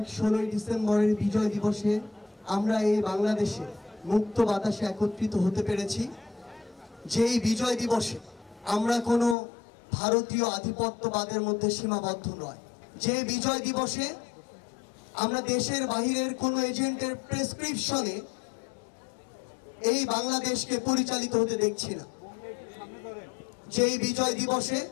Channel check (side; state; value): right; drops out; at 9.3 s